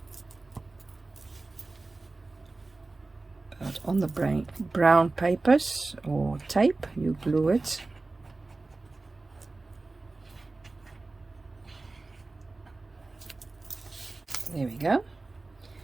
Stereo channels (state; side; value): quieter; left; 3.4 dB